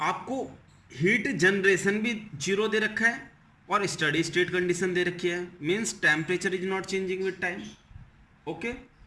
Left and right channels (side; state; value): both; identical; correlation 1.00